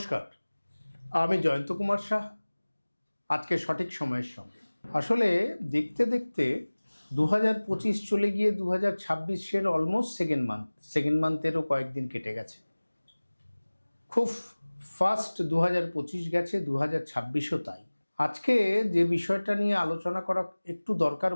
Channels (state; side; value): inverted; both; correlation -1.00